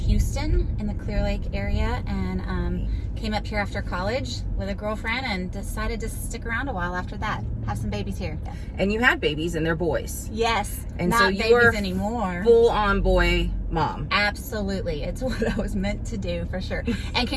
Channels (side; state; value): both; identical; correlation 1.00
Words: in the Clear Lake area, and came up here after college with a girlfriend and decided to stick around a while after that. Have some babies here. Yeah. And you had babies and they're boys. Yes. And not so you babies are anymore. Full-on boy mom. Absolutely. It's what I was meant to do for sure. And